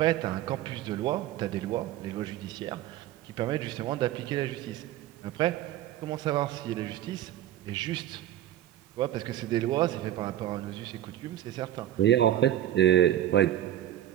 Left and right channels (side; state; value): left; quieter; 12.7 dB